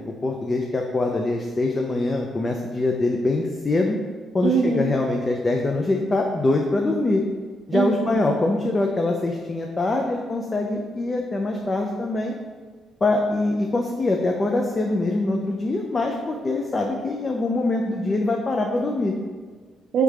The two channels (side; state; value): both; normal; correlation 0.83